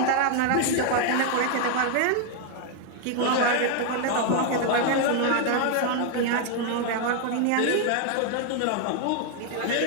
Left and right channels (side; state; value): both; different; correlation 0.00